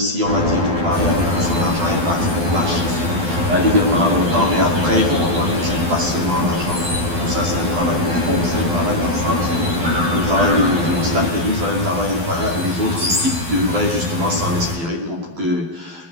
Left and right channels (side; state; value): left; late; 12 ms